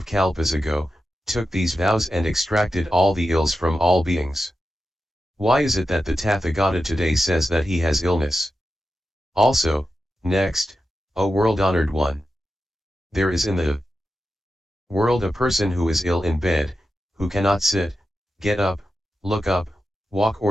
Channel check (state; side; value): normal; both; correlation 0.90